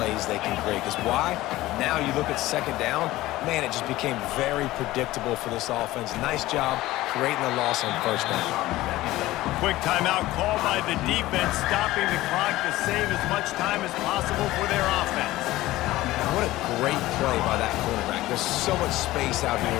they can create. Because why? Now you look at 2nd down, man, it just became very predictable for this offense. Nice job creating a loss on 1st down. Quick timeout called by the defense, stopping the clock to save as much time as possible for their offense. What a great play by that quarterback. There's so much space out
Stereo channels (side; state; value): right; quieter; 17.1 dB